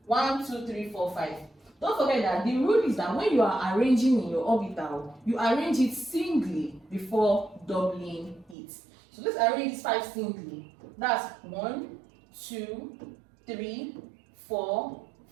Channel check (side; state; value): left; drops out; at 8.6 s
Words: 1, 2, 3, 4, 5. Don't forget that the rule is that when you are arranging in your orbital, you arrange it singly before doubling it. So let's arrange this 5 singly. That's 1, 2, 3, 4,